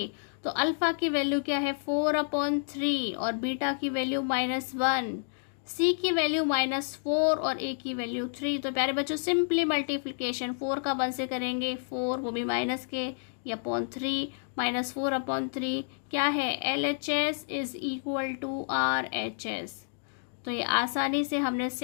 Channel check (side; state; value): right; silent; digital silence